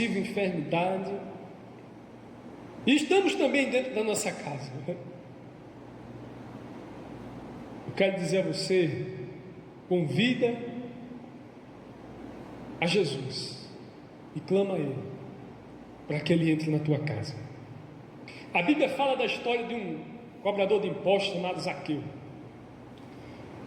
enfermidade. E estamos também dentro da nossa casa. Eu quero dizer a você: convida a Jesus e clama a Ele para que Ele entre na tua casa. A Bíblia fala da história de um cobrador de impostos chamado Zaqueu,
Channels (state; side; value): identical; both; correlation 1.00